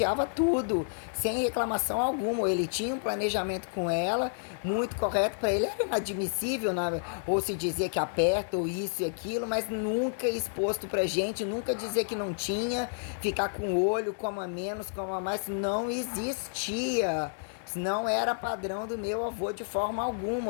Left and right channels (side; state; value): right; silent; 58 dB below the other